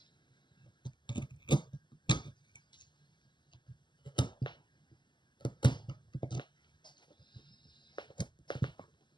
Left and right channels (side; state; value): right; late; 0.22 ms